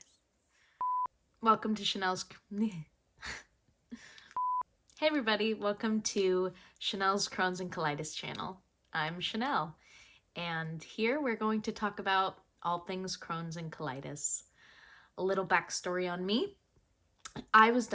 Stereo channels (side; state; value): both; identical; correlation 1.00